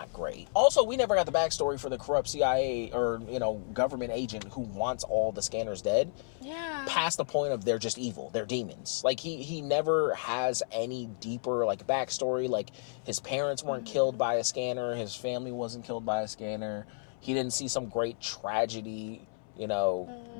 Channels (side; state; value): right; silent; 57 dB below the other